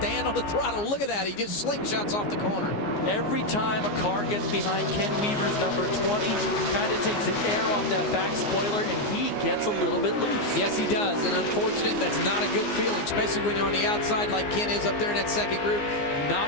on the throttle. Look at that. He just slingshots off the corner. Every time a car gets behind Ken Weaver's number 20, kind of takes the air off that back spoiler, and he gets a little bit loose. Yes, he does. And unfortunate, that's not a good feeling, especially when you're on the outside like Ken is up there in that second group.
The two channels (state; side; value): late; right; 14 ms